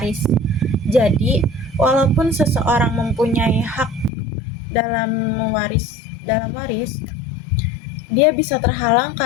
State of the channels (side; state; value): right; drops out; at 4.1 s